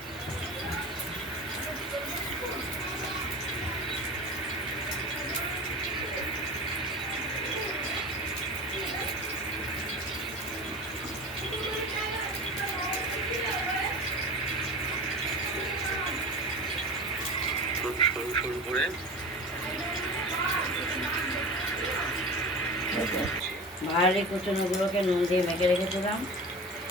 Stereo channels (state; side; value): normal; both; correlation 0.32